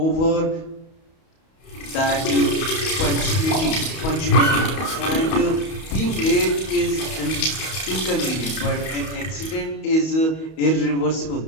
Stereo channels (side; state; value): right; late; 31 ms